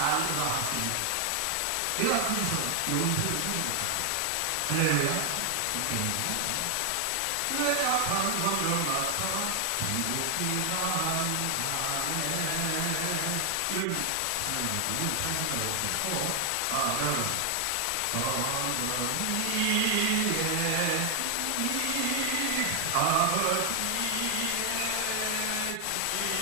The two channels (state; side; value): different; both; correlation 0.00